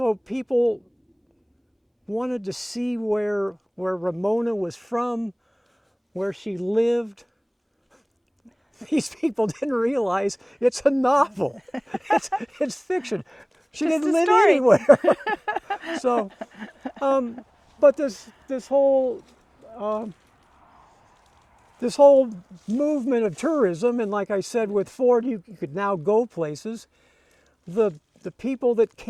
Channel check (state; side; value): identical; both; correlation 1.00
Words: people wanted to see where Ramona was from, where she lived. These people didn't realize it's a novel. It's fiction. She Just didn't a live story. anywhere. So, but this whole movement of tourism, and like I said, with Ford, you could now go places. The people that